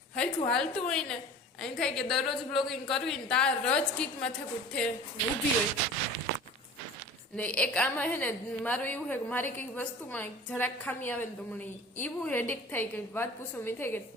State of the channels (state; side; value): normal; both; correlation 0.40